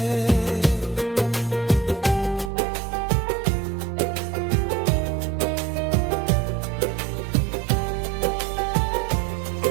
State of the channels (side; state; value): left; drops out; at 2.5 s